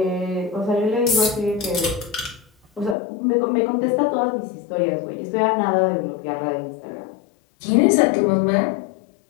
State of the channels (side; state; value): right; drops out; at 3.0 s